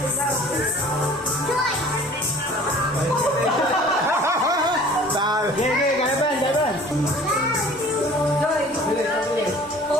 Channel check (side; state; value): both; normal; correlation 0.48